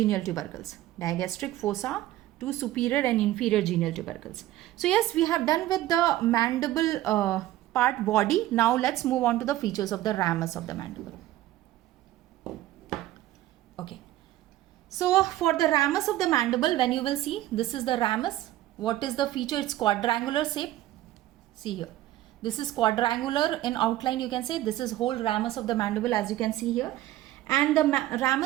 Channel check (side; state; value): left; quieter; 14.9 dB